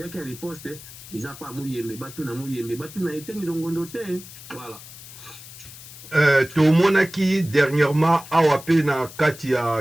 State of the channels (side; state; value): left; noise; hiss, 16 dB below the sound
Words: ya riposte eza pa Muyembe batuna Muyembe batuna Etienne Longondo te. Voilà. Tomonaki dernièrement awa pe na kati